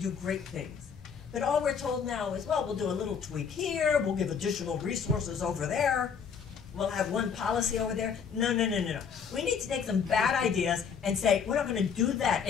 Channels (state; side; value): quieter; right; 6.6 dB